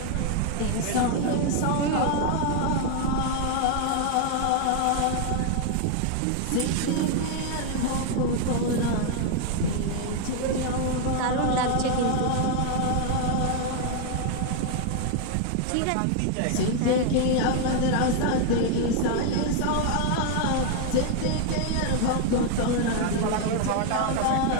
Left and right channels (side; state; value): both; different; correlation 0.00